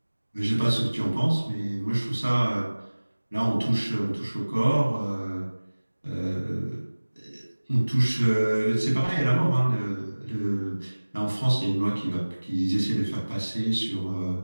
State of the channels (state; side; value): inverted; both; correlation -1.00